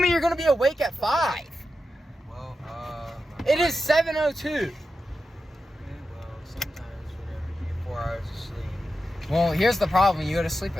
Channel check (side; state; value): both; normal; correlation 0.89